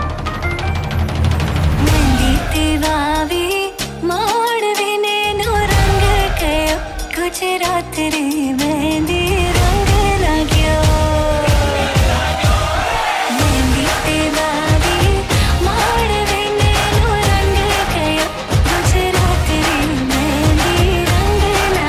माड़वे नैनो रंग गयो गुजरात रे मेहंदी रंग लाग्यो मेहंदी तेरा भी माड़वे नैनो रंग गयो गुजरात रे मेहंदी रंग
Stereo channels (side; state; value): both; identical; correlation 1.00